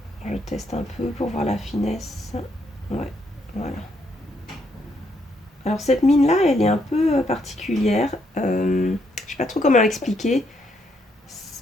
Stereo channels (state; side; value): normal; both; correlation 0.74